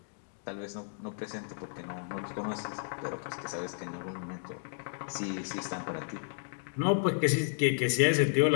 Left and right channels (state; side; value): silent; right; digital silence